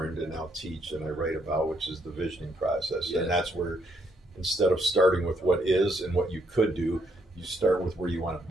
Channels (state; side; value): normal; both; correlation 0.73